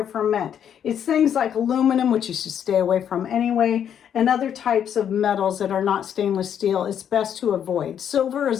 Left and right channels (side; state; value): right; quieter; 9.0 dB